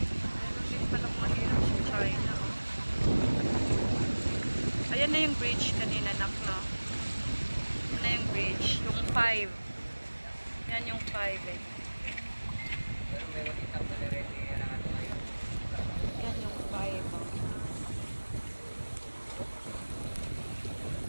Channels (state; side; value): inverted; both; correlation -1.00